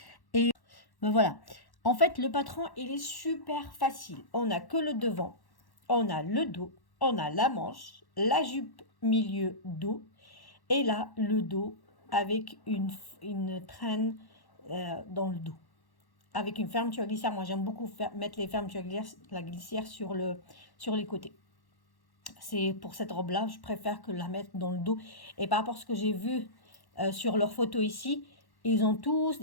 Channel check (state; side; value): late; right; 1.1 ms